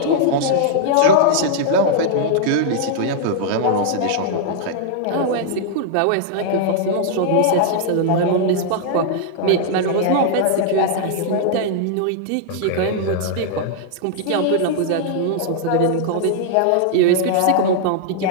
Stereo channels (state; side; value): different; both; correlation -0.01